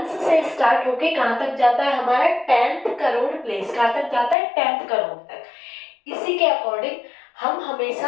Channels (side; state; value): right; drops out; at 4.4 s